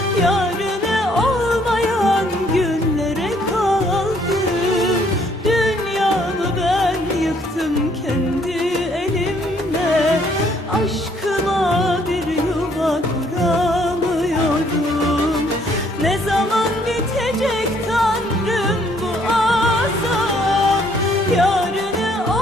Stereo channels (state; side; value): normal; both; correlation 0.65